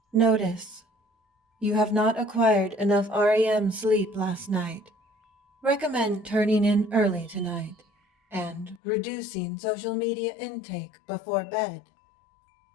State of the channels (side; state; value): right; drops out; at 8.8 s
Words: Notice: you have not acquired enough REM sleep last night. Recommend turning in early tonight and reducing social media intake before bed.